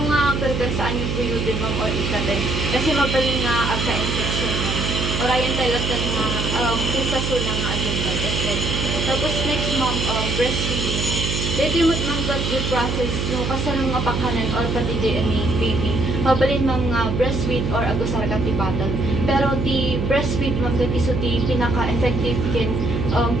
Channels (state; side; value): noise; right; hum, 1 dB below the sound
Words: pergan saan yung buyo din ma'am or ikatin. Kasi mabaling nga agka-infection ma'am. Orayan talaga nga pusaso na nga agenda. Tapos next ma'am, breastfeeding. Dito yung ma'am yung process no, kasanang nga pakanan or pati DNA baby. Mabalin ma'am nga breastfeed or agusar ka ti battle. Pero ti breastfeed ma'am dati so ti pinaka-effective kin,